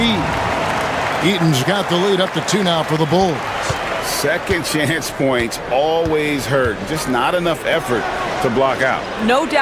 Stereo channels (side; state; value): both; identical; correlation 1.00